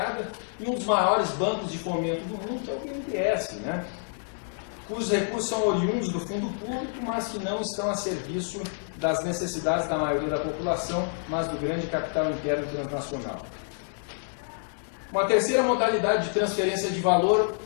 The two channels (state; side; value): silent; right; 60 dB below the other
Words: e um dos maiores bancos de fomento do mundo, que é o BNDES, né? Cujos recursos são oriundos do fundo público, mas que não estão a serviço das necessidades da maioria da população, mas do grande capital interno transnacional. Uma terceira modalidade de transferência de valor